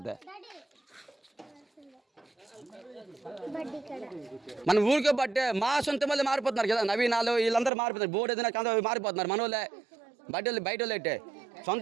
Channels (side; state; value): left; drops out; at 7.7 s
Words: మన ఊరికే బట్టే మా సొంత మళ్ళీ మారిపోతున్నారు కదా. నవీనాలు వీళ్ళందరూ మారిపోతున్నారు. బోర్డు ఏదైనా మారిపోతున్నారు. మన వాళ్ళే బయట వాళ్ళు అయితే